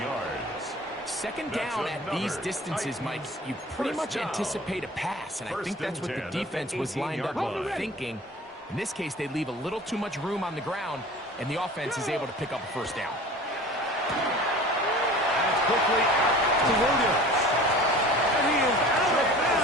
yards. Second down at these distances, Mike, you pretty much anticipate a pass, and I think that's what the defense was lined up thinking. In this case, they leave a little too much room on the ground, and the offense is able to pick up a first down. That's quickly out to Williams. And he is out of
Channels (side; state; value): both; normal; correlation 0.42